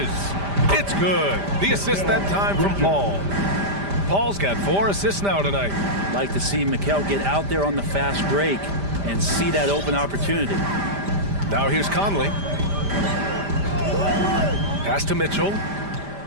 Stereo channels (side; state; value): left; late; 5.0 ms